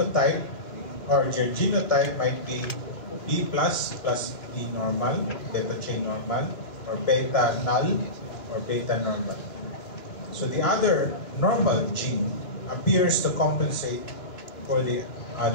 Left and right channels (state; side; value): late; right; 2.9 ms